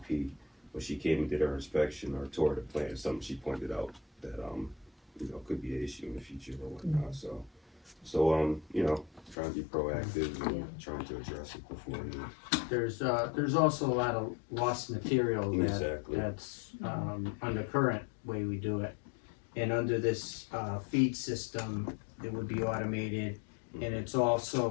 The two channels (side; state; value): right; drops out; at 9.3 s